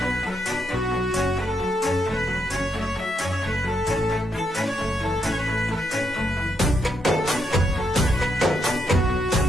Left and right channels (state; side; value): normal; both; correlation 0.79